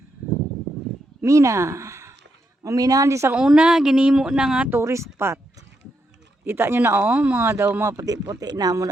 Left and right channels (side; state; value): both; normal; correlation 0.81